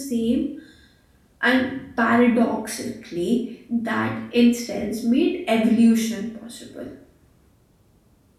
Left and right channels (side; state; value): both; identical; correlation 1.00